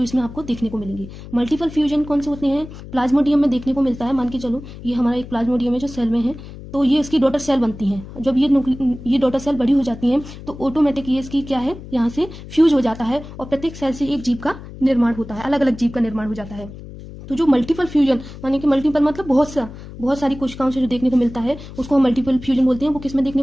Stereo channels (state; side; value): noise; left; hum, 14 dB below the sound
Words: इसमें आपको देखने को मिलेंगे। मल्टीपल फ्यूजन कौन से होते हैं, प्लाज्मोडियम में देखने को मिलता है। मान के चलो ये हमारा एक प्लाज्मोडियम है जो सेल में है, तो ये इसकी डॉटर सेल बनती हैं। जब ये डॉटर सेल बड़ी हो जाती हैं तो ऑटोमेटिक ये इसकी क्या है, यहाँ से फ्यूज हो जाता है और प्रत्येक सेल से एक जीव का निर्माण होता है, अलग अलग जीव का निर्माण हो जाता है। तो जो मल्टीपल फ्यूजन, यानी कि मल्टीपल मतलब बहुत सारी कोशिकाओं से जो देखने को मिलता है उसको हम मल्टीपल फ्यूजन बोलते हैं। वो किस में देखने